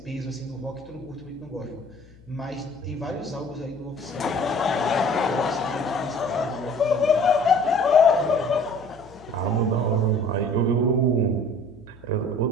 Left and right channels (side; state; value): left; noise; hum, 24 dB below the sound